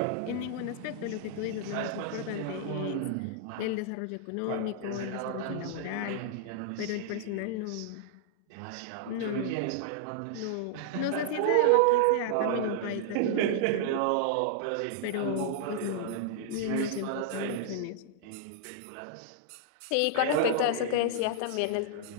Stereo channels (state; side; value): different; both; correlation -0.01